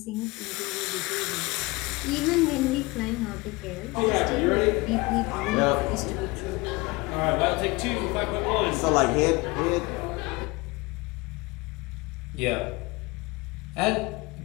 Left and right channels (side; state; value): right; quieter; 23.7 dB